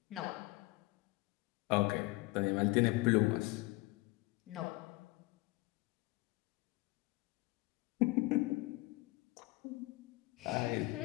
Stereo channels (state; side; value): quieter; right; 22.3 dB